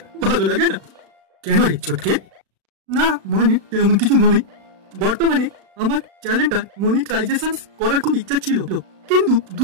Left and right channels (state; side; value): late; left; 36 ms